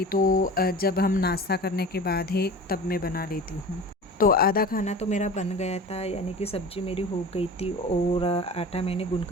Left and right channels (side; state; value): both; normal; correlation 0.36